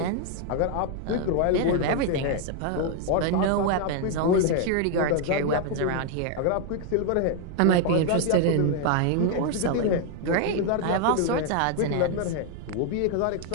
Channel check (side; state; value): both; different; correlation 0.00